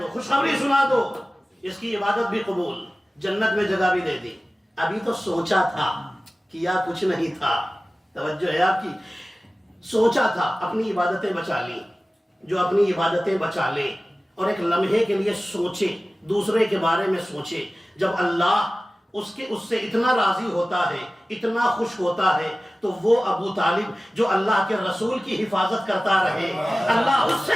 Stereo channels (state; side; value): normal; both; correlation 0.97